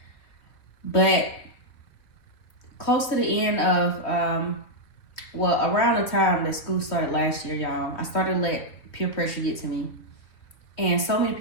But close to the end of, around the time that school started last year, y'all, I started to let peer pressure get to me. And so many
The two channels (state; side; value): late; right; 3.3 ms